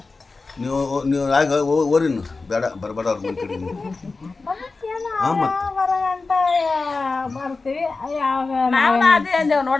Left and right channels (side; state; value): right; quieter; 3.9 dB